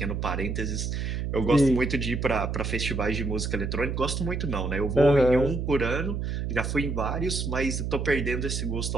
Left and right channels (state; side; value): noise; right; hum, 2 dB below the sound